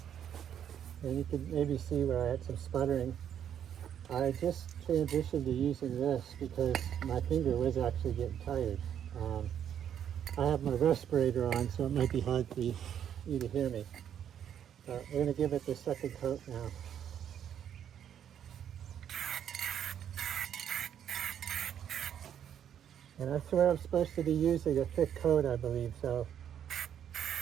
and you can maybe see where I had some sputtering. I just transitioned to using this because my finger was actually getting tired. I have my respirator on, so it might be hard for you to hear me. We're going to give it the second coat now. And I swear I'm supposed to be using a thick coat, I believe, so.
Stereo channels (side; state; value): left; quieter; 9.3 dB